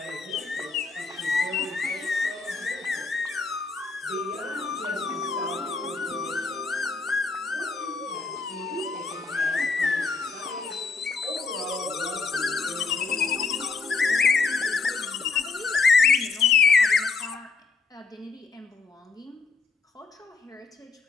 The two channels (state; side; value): quieter; right; 4.6 dB